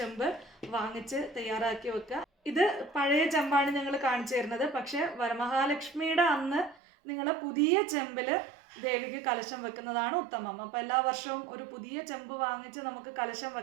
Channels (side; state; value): left; drops out; at 6.8 s